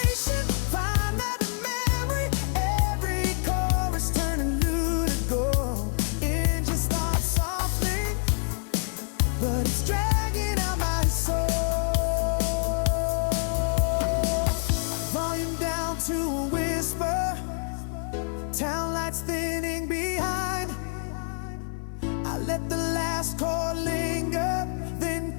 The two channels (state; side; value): silent; right; 60 dB below the other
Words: find that memory. Every chorus turning new to gold. Engine starts softly, but it's dragging out my soul. Volume down to a whisper, town lights thinning behind. I let the last chord linger, then